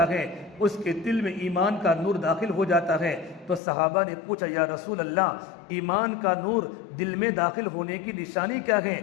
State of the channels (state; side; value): drops out; right; at 3.6 s